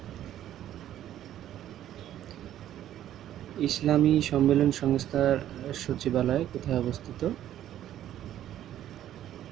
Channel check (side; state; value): left; quieter; 11.9 dB